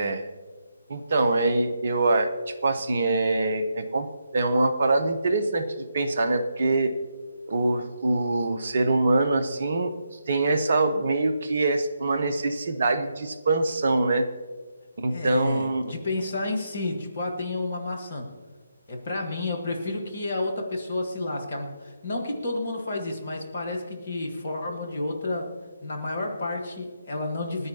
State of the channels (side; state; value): both; inverted; correlation -0.82